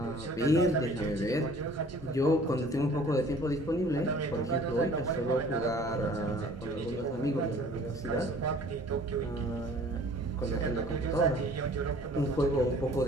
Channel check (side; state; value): both; normal; correlation 0.51